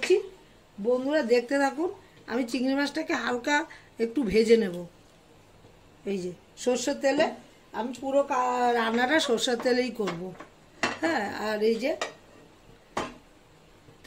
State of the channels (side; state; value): both; identical; correlation 1.00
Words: বন্ধুরা দেখতে থাকুন। আমি চিংড়ি মাছটাকে হালকা একটু ভেজে নেব। এই যে সর্ষের তেলে, আমি পুরো রান্নাটা সর্ষের তেলেই করব। হ্যাঁ, আর এই যে